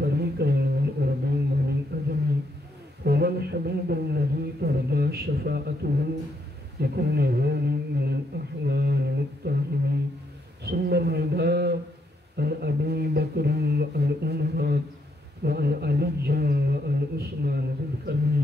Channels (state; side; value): normal; both; correlation 0.76